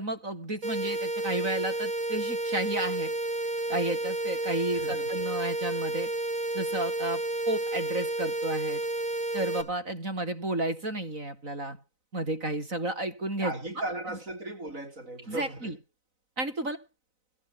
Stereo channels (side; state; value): left; late; 4.0 ms